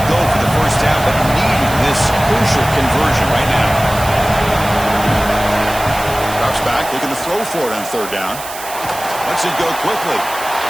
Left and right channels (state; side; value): noise; right; hiss, 12 dB below the sound